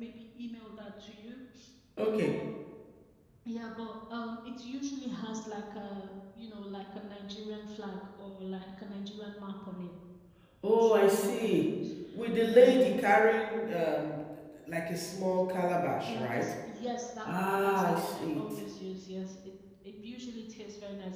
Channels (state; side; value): identical; both; correlation 1.00